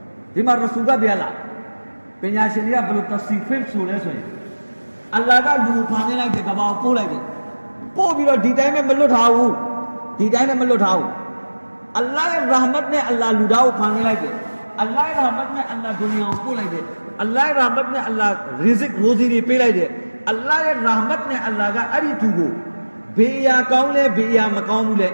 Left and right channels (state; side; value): inverted; both; correlation -1.00